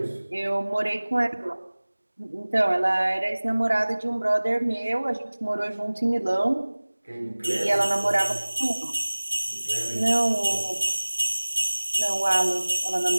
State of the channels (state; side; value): inverted; both; correlation -1.00